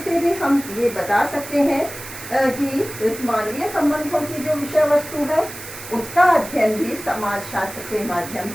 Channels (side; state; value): right; noise; hiss, 12 dB below the sound